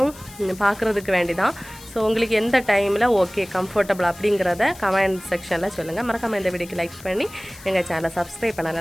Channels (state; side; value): noise; left; hiss, 19 dB below the sound